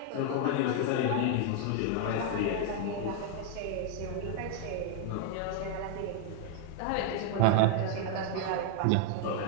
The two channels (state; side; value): different; both; correlation 0.00